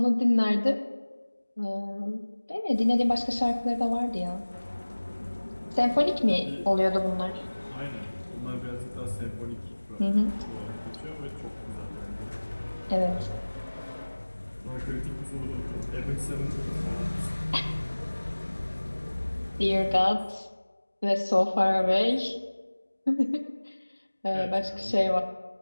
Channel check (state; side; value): inverted; both; correlation -1.00